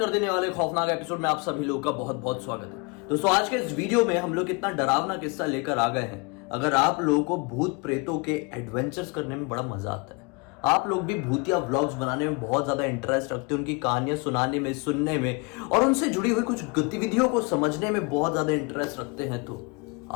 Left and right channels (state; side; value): quieter; right; 30.1 dB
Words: देने वाले खौफनाक एपिसोड में आप सभी लोगों का बहुत बहुत स्वागत है। दोस्तों आज के इस वीडियो में हम लोग कितना डरावना किस्सा लेकर आ गए हैं। अगर आप लोगों को भूत प्रेतों के एडवेंचर्स करने में बड़ा मजा आता है, आप लोग भी भूतिया व्लॉग्स बनाने में बहुत ज्यादा इंटरेस्ट रखते हैं, उनकी कहानियां सुनाने में, सुनने में और उनसे जुड़ी हुई कुछ गतिविधियों को समझने में बहुत ज्यादा इंटरेस्ट रखते हैं, तो